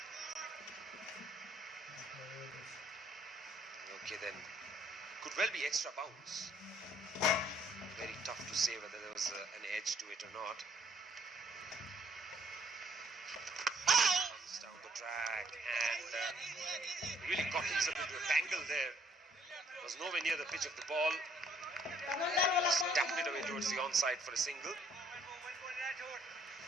Okay, then. Could well be extra bounce. Very tough to say whether there was an edge to it or not. Comes down the track and really got himself into a tangle there. Was nowhere near the pitch of the ball. Just tapped it away towards the onside for a single.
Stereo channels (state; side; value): normal; both; correlation 0.64